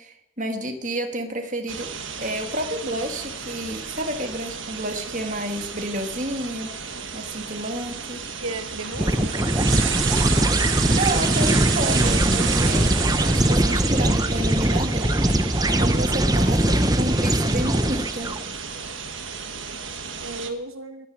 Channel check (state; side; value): normal; both; correlation 0.61